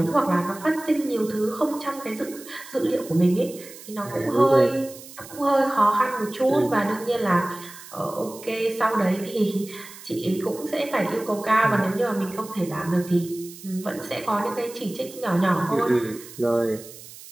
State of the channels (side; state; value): right; noise; hiss, 17 dB below the sound